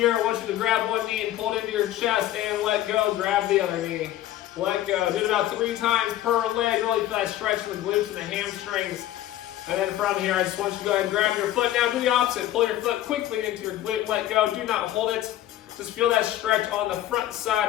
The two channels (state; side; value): quieter; right; 13.4 dB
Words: I want you to grab one knee and pull it into your chest and let go. Grab the other knee. Let go. Do it about 3 times per leg. Really feel that stretch in the glutes and the hamstrings. And then from here, I just want you to go ahead and grab your foot. Now do the opposite. Pull your foot quickly into your glute. Let go. Do not hold it. Just feel that stretch on the front